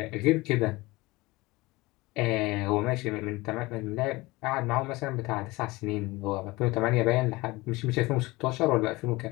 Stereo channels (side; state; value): right; quieter; 21.7 dB